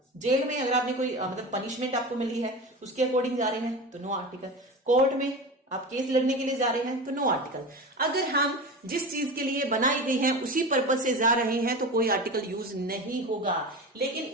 जेल में अगर आपने कोई मतलब पनिशमेंट आपको मिली है उसके अकॉर्डिंग जा रहे हैं तो नो आर्टिकल। कोर्ट में आप केस लड़ने के लिए जा रहे हैं तो नो आर्टिकल। अगर हम जिस चीज के लिए बनाई गई है उसी पर्पज से जा रहे हैं तो कोई आर्टिकल यूज नहीं होगा। लेकिन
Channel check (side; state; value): both; normal; correlation 0.28